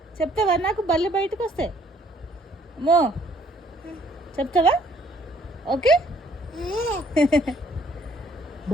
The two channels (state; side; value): normal; both; correlation 0.62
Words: చెప్తావా? నాకు బల్లి బయటకు వస్తే అమ్మో చెప్తావా? ఓకే.